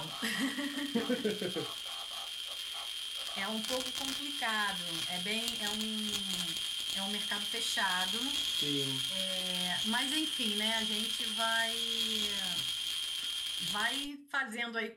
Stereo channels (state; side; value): identical; both; correlation 1.00